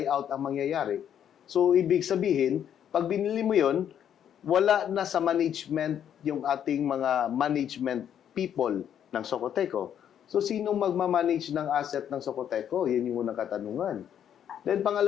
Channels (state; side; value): quieter; right; 9.4 dB